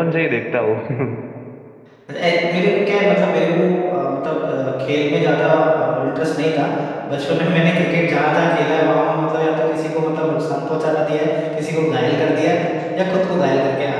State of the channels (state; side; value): identical; both; correlation 1.00